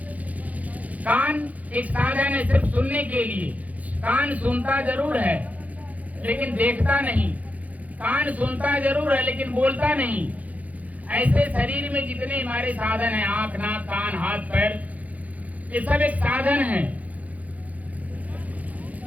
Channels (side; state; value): left; late; 0.074 ms